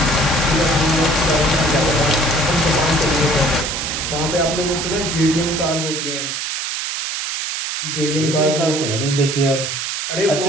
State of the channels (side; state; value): right; noise; hiss, 3 dB below the sound